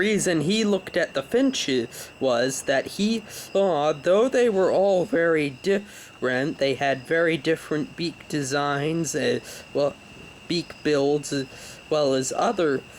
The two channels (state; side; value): identical; both; correlation 1.00